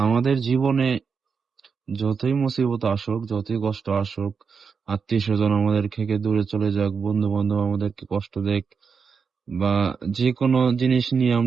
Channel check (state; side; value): quieter; left; 5.7 dB